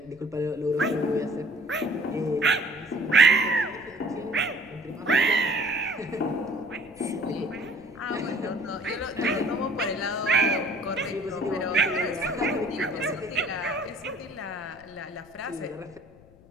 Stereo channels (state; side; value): noise; left; rumble, 26 dB below the sound